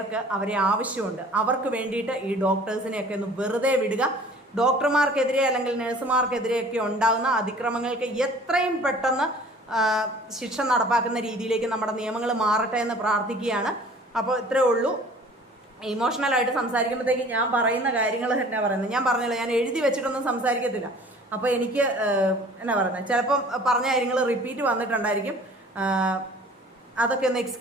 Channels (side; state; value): both; normal; correlation 0.49